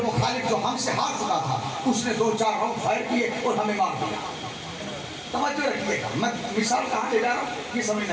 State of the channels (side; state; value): both; identical; correlation 1.00